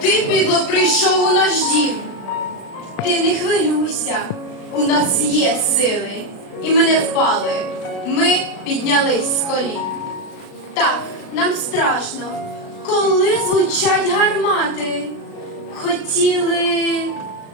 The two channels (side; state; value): right; late; 36 ms